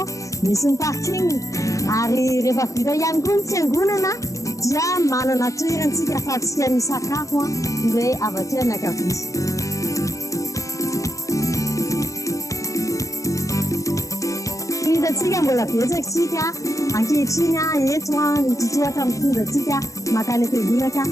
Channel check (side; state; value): right; late; 0.16 ms